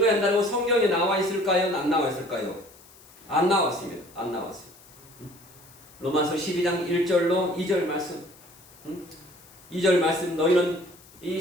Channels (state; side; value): noise; left; hiss, 24 dB below the sound